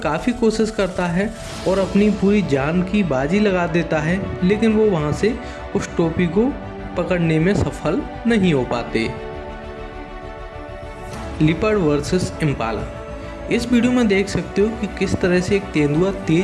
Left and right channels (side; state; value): both; identical; correlation 1.00